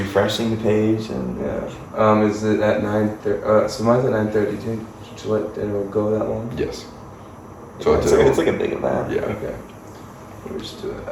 the page and? Yeah. Is it at 9:30? So mine's at 9:30. Do you think Gillette dinner will go that long? Yes. So It's like a big event. Yeah. Okay. We'll just do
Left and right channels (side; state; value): both; identical; correlation 1.00